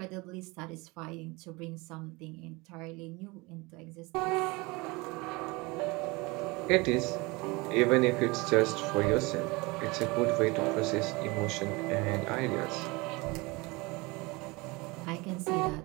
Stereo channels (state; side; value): quieter; left; 24.9 dB